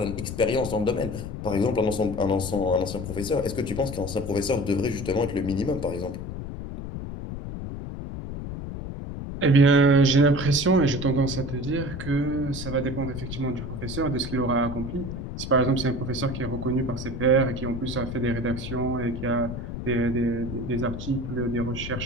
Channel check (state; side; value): noise; left; rumble, 7 dB below the sound